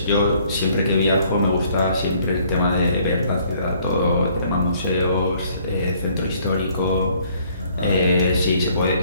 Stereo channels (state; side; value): inverted; both; correlation -0.62